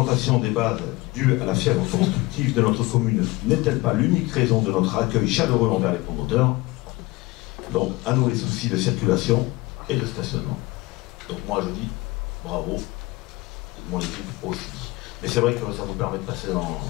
des bases due à la fièvre constructive de notre commune n'est-elle pas l'unique raison de notre accueil chaleureux envers les promoteurs? Donc, à nous les soucis de circulation et de stationnement. Donc moi je dis bravo, mon équipe aussi. Mais c'est vrai que ça vous permet de passer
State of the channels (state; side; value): quieter; right; 21.6 dB